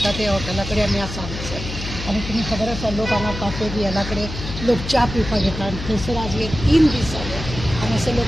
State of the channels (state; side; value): noise; left; hum, 8 dB below the sound